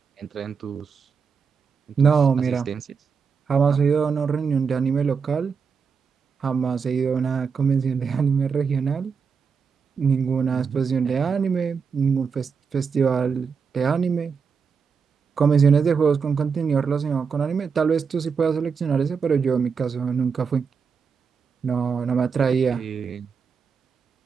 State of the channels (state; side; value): quieter; left; 5.9 dB